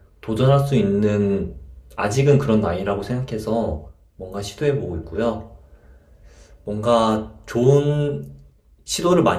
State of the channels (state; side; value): identical; both; correlation 1.00